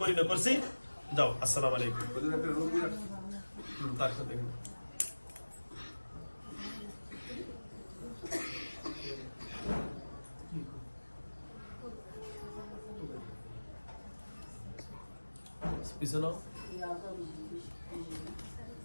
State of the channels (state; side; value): inverted; both; correlation -1.00